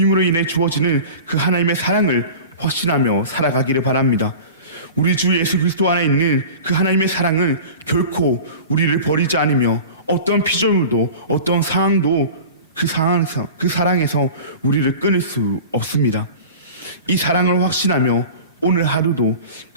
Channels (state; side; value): inverted; both; correlation -0.37